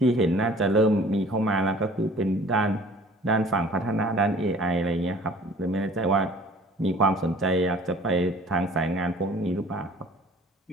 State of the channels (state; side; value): normal; both; correlation 0.50